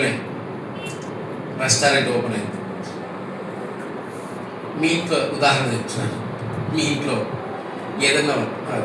రెస్టారెంట్ ఓపెన్ అయింది. మీ ఇంట్లో ఉదాహరణ చెప్తున్నాను. మీ ఇంట్లో ఏదన్నా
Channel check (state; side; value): identical; both; correlation 1.00